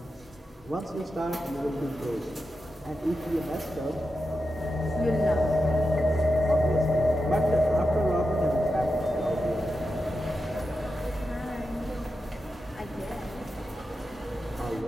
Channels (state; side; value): normal; both; correlation 0.89